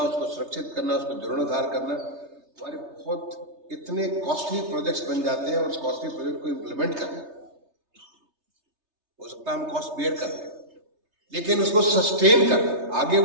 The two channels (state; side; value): late; left; 3.3 ms